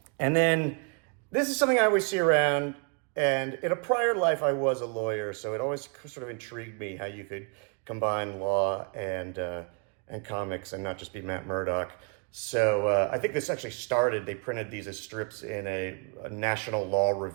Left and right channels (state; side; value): quieter; left; 36.3 dB